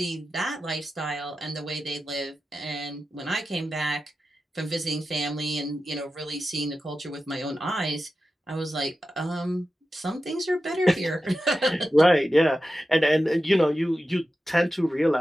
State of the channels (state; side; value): normal; both; correlation 0.92